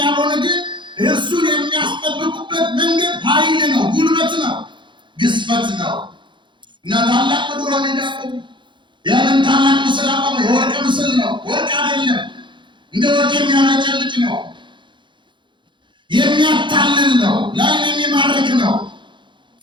ያልሆነ ግን እርሱን የሚያስጠብቁበት መንገድ ኃይል ነው፣ ጉልበት ነው፣ ግዝፈት ነው። እና ታላቅ በዱራ ሜዳ ቆሙ። ያንን ታላቅ ምስል አቆመ። የወርቅ ምስል ነው፣ ወርቅ አይደለም። እንደ ወርቅ የሚያመጨልጭ ነው፣ የሚያታልል ነው፣ ላይን የሚማርክ ነው።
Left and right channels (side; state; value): left; late; 0.23 ms